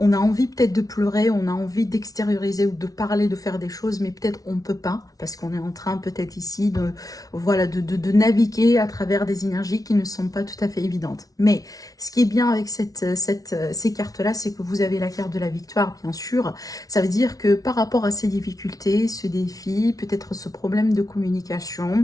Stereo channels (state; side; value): late; right; 0.18 ms